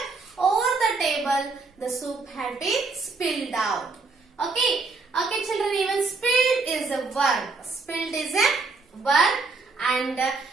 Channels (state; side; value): quieter; left; 4.0 dB